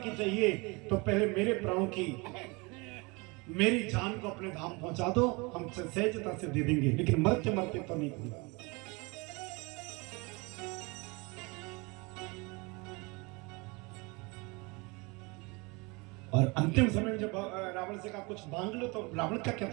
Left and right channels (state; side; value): quieter; left; 27.3 dB